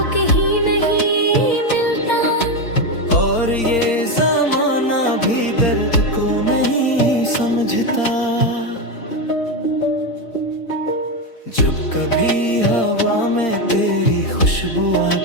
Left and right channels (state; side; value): late; right; 4.4 ms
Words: कहीं नहीं मिलता, और ये जमाना भी दर्द को नहीं समझता। जब कभी हवा में तेरी खुशबू